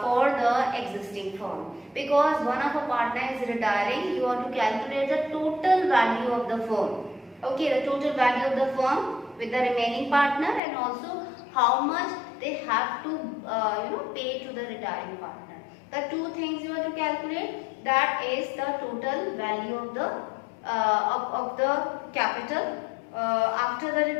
for the existing firm. Because one of a partner is retiring, you want to calculate the total value of the firm. Okay, the total value of the firm with the remaining partner and also how much they have to pay to the retiring partner. The two things you have to calculate, that is the total value of the capital after the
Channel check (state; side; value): drops out; right; at 10.6 s